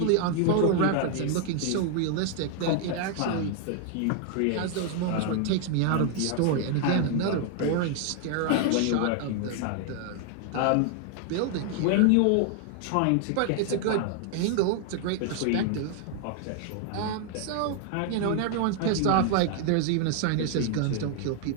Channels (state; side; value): different; both; correlation 0.00